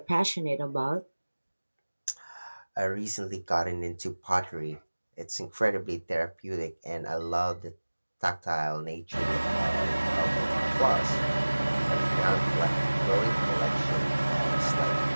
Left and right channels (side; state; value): both; inverted; correlation -1.00